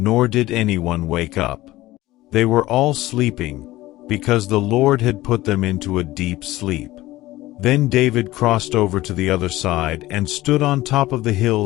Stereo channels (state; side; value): quieter; right; 17.2 dB